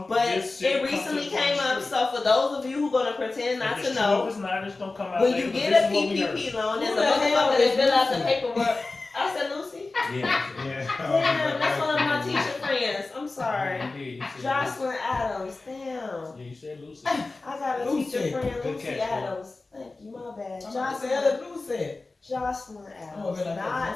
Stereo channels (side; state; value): right; quieter; 3.5 dB